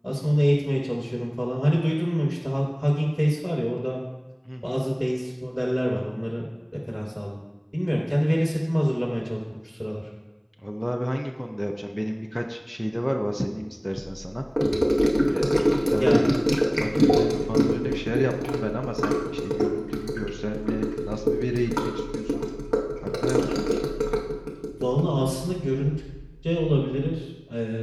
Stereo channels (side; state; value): both; identical; correlation 1.00